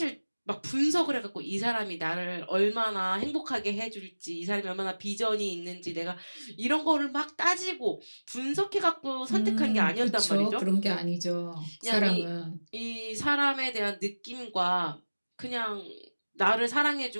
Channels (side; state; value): both; inverted; correlation -1.00